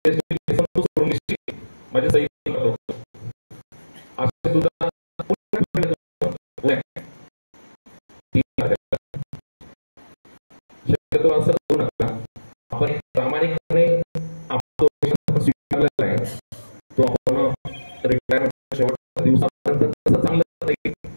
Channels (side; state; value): both; inverted; correlation -1.00